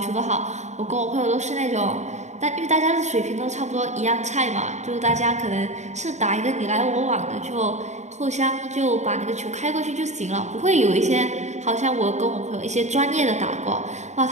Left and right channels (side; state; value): left; late; 0.34 ms